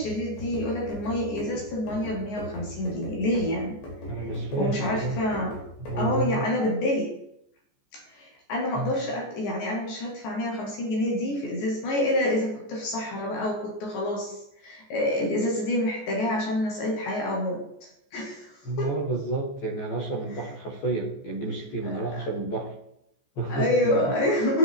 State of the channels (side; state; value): right; late; 14 ms